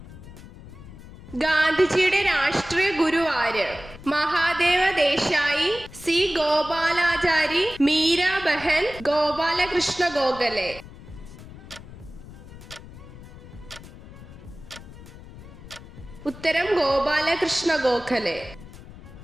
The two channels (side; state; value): left; noise; rumble, 17 dB below the sound